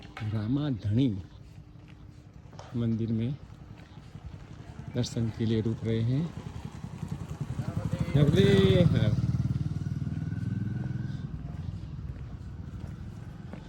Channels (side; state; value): both; identical; correlation 1.00